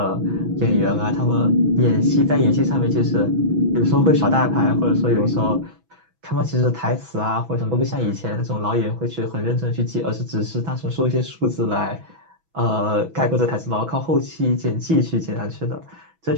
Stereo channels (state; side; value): late; left; 6.1 ms